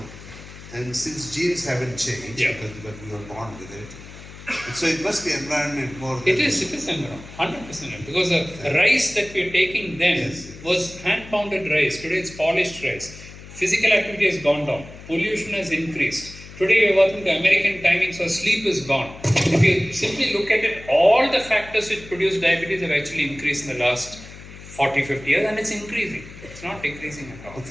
and since genes haven't changed, because we were born with it, so it must be environment more than... It is environment, 100%. Because the rice that we are taking then was hand-pounded rice. Today it's polished rice. Physical activity has gone down. Pollution has increased. Today we are working to American timing, so sleep is gone. If you simply look at it, all the factors which produce diabetes have actually increased in the last 40, 50 years, and it's increasing. It's not decreasing at all. Well,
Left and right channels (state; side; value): noise; left; hum, 16 dB below the sound